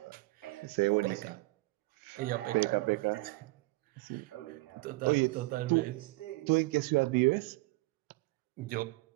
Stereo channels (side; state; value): left; quieter; 22.4 dB